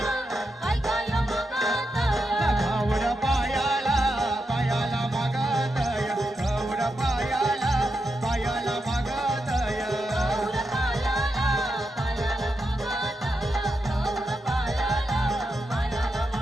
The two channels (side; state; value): both; normal; correlation 0.86